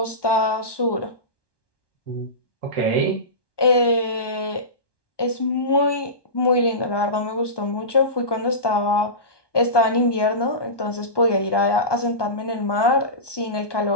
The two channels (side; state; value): right; late; 1.2 ms